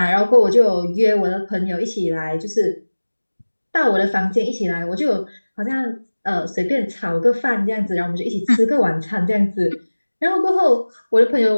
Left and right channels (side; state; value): both; inverted; correlation -1.00